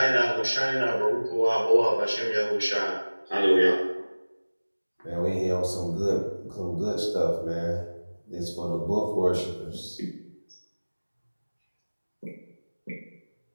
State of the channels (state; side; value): inverted; both; correlation -1.00